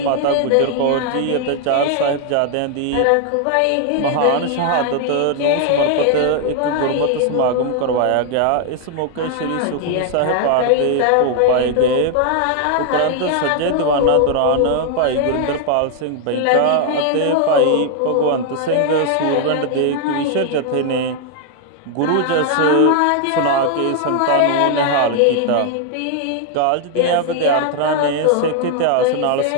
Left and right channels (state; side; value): different; both; correlation 0.00